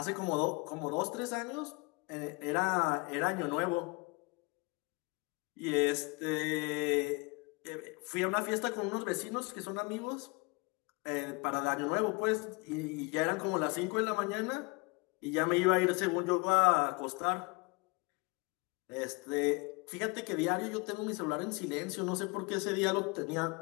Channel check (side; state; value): right; quieter; 28.2 dB